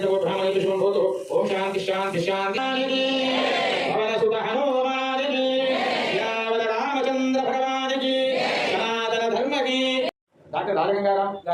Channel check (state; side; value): identical; both; correlation 1.00